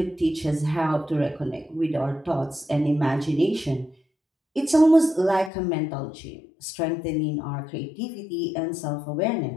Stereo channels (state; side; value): drops out; right; at 5.5 s